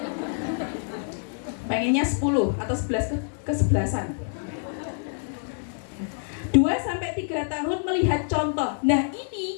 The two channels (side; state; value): right; silent; digital silence